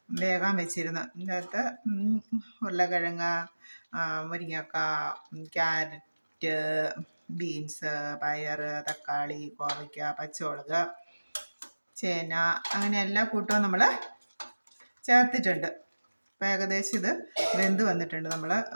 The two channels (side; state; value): both; inverted; correlation -1.00